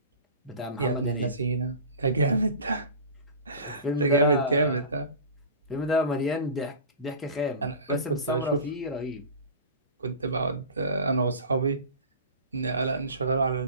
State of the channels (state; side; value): inverted; both; correlation -0.34